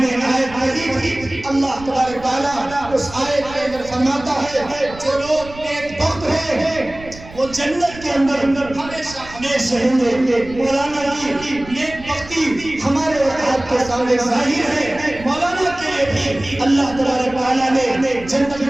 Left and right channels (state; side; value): noise; right; rumble, 17 dB below the sound